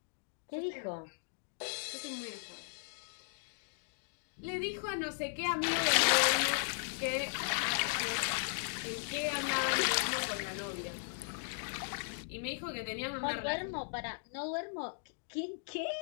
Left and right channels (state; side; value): silent; right; digital silence